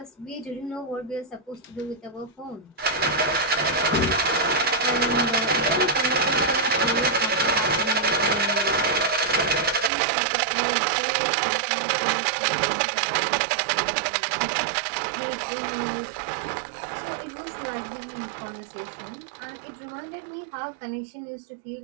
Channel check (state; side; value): drops out; left; at 9.9 s